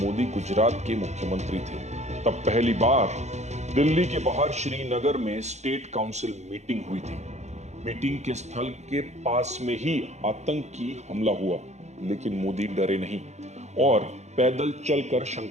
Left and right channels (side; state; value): left; late; 0.33 ms